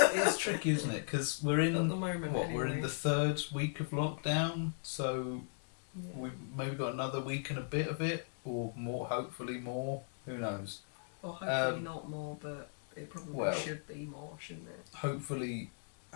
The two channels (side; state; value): right; silent; 53 dB below the other